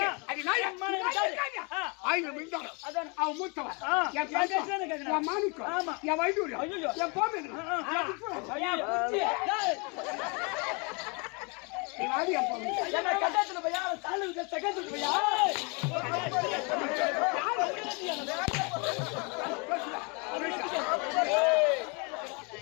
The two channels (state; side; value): quieter; right; 32.1 dB